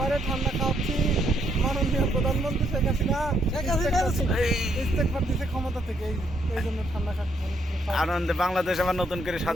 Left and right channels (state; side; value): normal; both; correlation 0.73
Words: ঠান্ডা খাওয়াচ্ছি মাননীয় প্রধানমন্ত্রী শেখ হাসিনা ইস্তেগফার দিছে ক্ষমতা থেকে, এই জন্য ঠান্ডা খাচ্ছি। আনন্দে বাংলাদেশ আবার নতুন করে